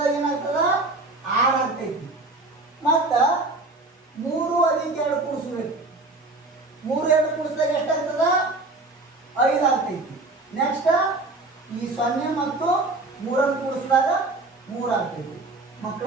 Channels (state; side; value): quieter; left; 3.1 dB